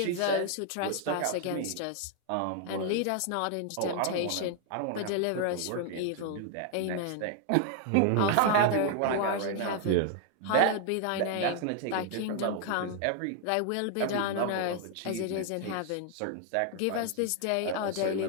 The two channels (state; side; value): different; both; correlation 0.00